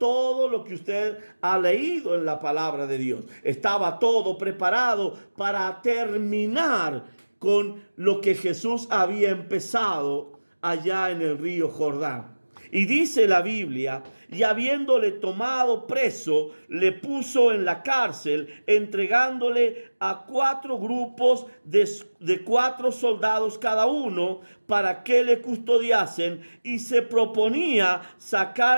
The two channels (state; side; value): inverted; both; correlation -1.00